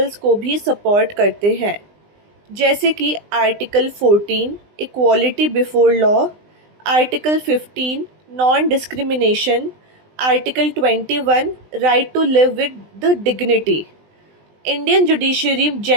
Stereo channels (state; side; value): late; left; 20 ms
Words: को भी सपोर्ट करते हैं, जैसे कि article 14 equality before law, article 15 non discrimination, article 21 right to live with the dignity. Indian judiciary